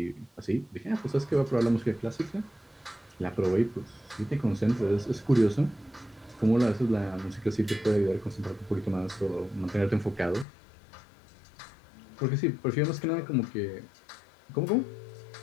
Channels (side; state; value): right; drops out; at 10.5 s